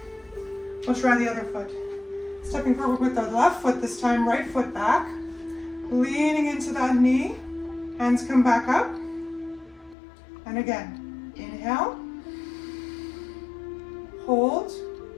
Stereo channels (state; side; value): drops out; right; at 10.0 s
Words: We'll try the other foot. Stepping forward with the left foot this time, right foot back. Leaning into that knee. Hands come back up. And again, inhale. Hold.